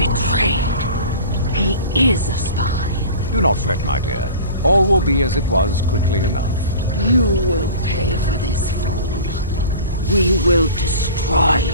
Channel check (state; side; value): inverted; both; correlation -0.38